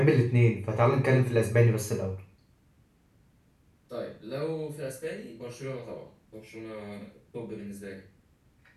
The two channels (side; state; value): both; identical; correlation 1.00